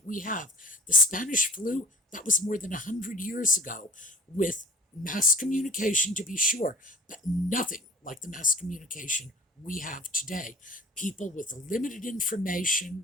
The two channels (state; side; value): normal; both; correlation 0.46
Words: we have? The Spanish flu, that was more than 100 years ago, with mass communication, to be sure, but nothing like the mass communication we have today. People with limited information